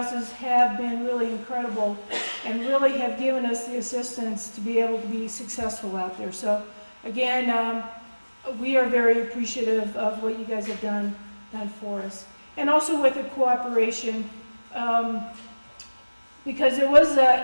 have been really incredible and really have given us the assistance to be able to be successful out there. So again, we are very appreciative of what you guys have done for us. And also with the cooperation, because it was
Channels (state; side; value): inverted; both; correlation -1.00